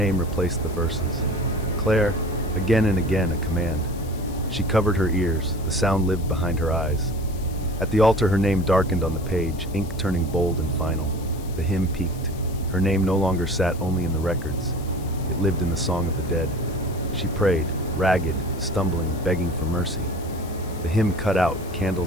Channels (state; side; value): noise; left; hiss, 20 dB below the sound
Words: replaced the verses. Claire, again and again a command. She covered her ears. The sound lived behind her eyes. At the altar, her name darkened on the page, ink turning bold and final. The hymn peaked. Her name no longer sat only in the records. It lived in the song of the dead. She prayed, ragged, stumbling, begging for mercy. The hymn cut out,